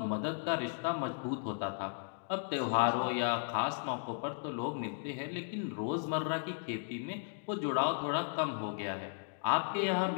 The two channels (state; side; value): silent; right; digital silence